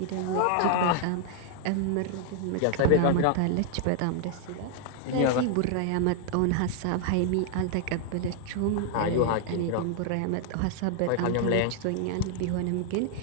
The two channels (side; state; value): both; different; correlation 0.00